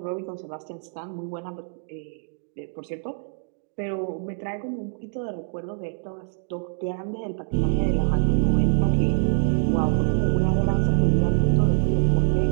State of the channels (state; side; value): silent; left; digital silence